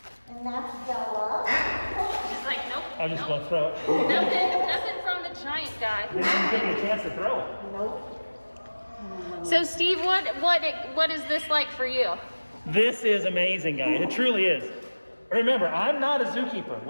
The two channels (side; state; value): both; inverted; correlation -1.00